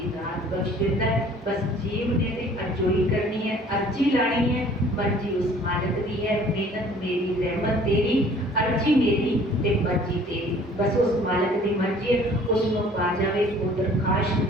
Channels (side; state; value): both; normal; correlation 0.53